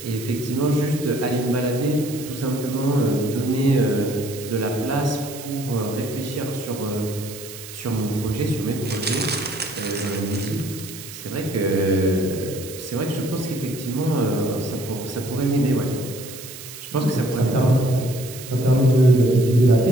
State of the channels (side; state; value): right; noise; hiss, 13 dB below the sound